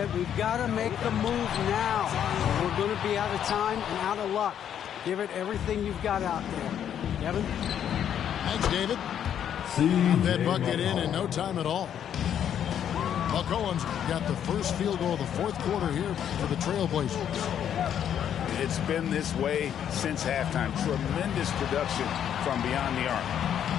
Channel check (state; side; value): quieter; right; 9.4 dB